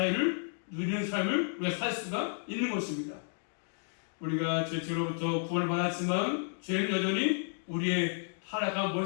누리는 삶을 우리가 살 수가 있는 것입니다. 우리가 죄로부터 구원을 받았지만 죄는 여전히 우리의 타락한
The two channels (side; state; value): right; silent; digital silence